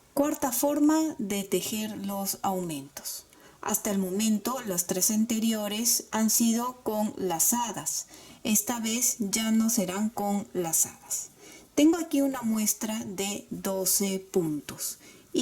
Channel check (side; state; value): both; identical; correlation 1.00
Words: Cuarta forma de tejer los aumentos. Hasta el momento las 3 anteriores han sido con lazadas. Esta vez ya no serán con lazadas. Tengo aquí una muestra de 12 puntos